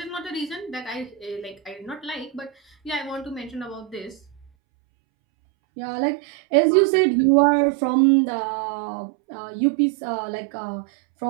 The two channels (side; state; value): left; drops out; at 4.5 s